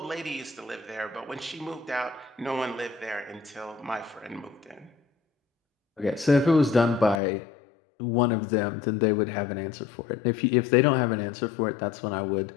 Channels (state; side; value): drops out; right; at 7.2 s